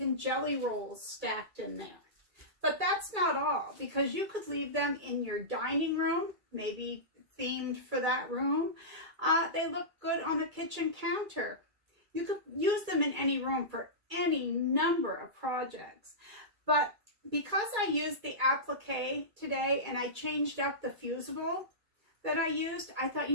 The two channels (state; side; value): late; left; 2.3 ms